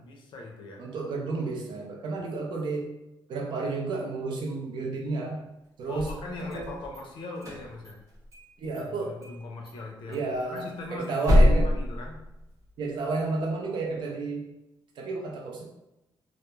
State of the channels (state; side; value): normal; both; correlation 0.81